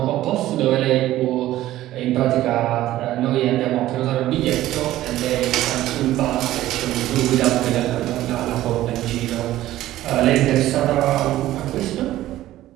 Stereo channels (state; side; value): quieter; left; 14.7 dB